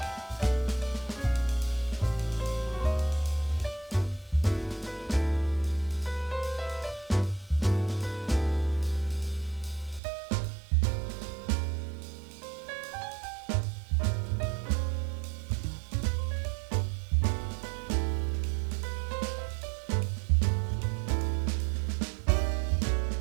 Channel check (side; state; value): left; drops out; at 10.0 s